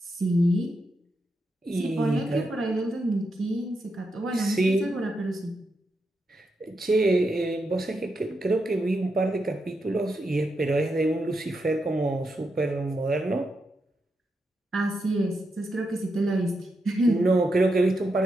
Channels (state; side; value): normal; both; correlation 0.84